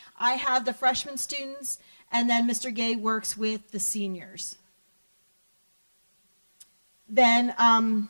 I have the freshman students, and then Mr. Gay works with the seniors. Then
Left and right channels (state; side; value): inverted; both; correlation -1.00